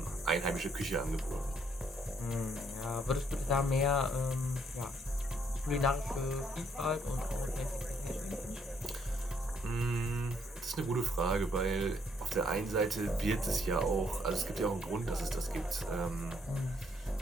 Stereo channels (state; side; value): normal; both; correlation 0.69